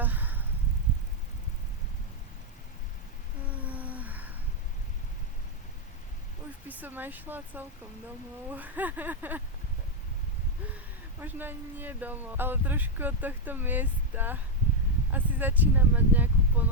Už by som aj šla celkom domov. Možno ani nie domov, ale trošku od tohto miesta. Asi začínam mať nejakú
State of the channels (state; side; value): normal; both; correlation 0.02